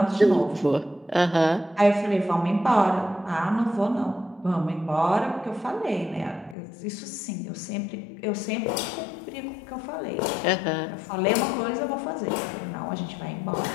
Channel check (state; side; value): drops out; right; at 6.6 s